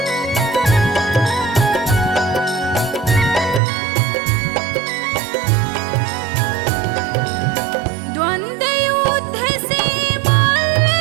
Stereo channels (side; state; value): left; drops out; at 3.6 s